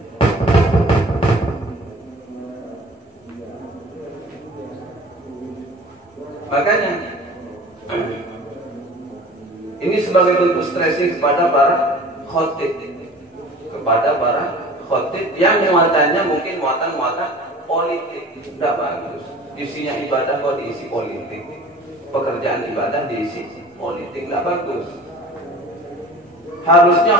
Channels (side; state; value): both; normal; correlation 0.44